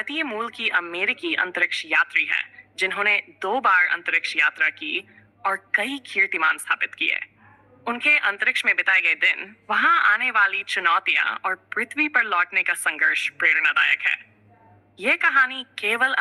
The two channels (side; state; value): both; identical; correlation 1.00